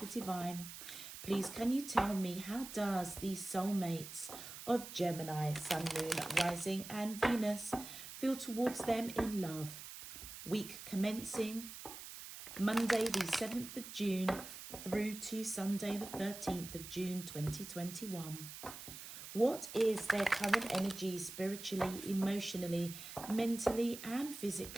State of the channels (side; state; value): right; noise; hiss, 11 dB below the sound